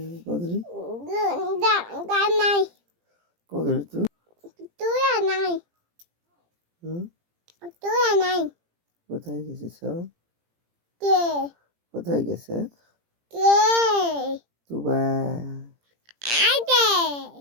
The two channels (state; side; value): late; left; 17 ms